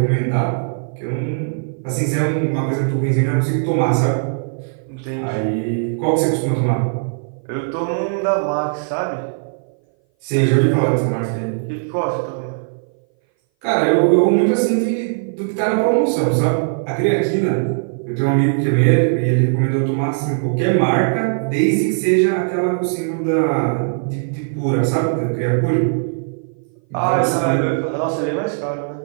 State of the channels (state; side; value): silent; left; 59 dB below the other